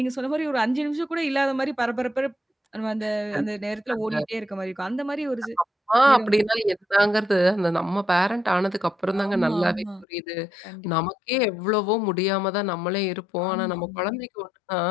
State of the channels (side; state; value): right; drops out; at 10.1 s